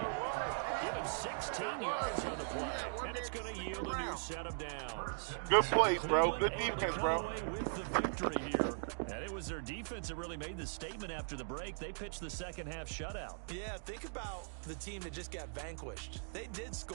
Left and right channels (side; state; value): left; silent; digital silence